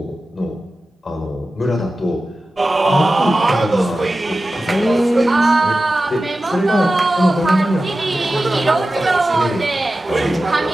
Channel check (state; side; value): normal; both; correlation 0.94